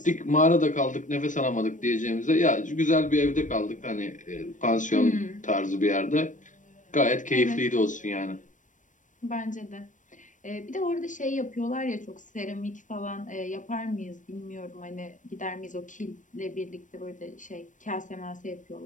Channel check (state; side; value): late; right; 0.37 ms